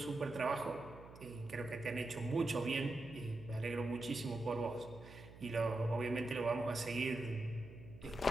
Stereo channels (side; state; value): right; noise; hum, 17 dB below the sound